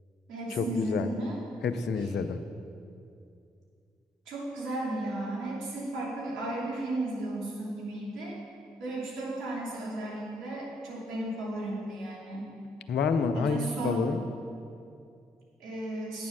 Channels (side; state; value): both; normal; correlation 0.69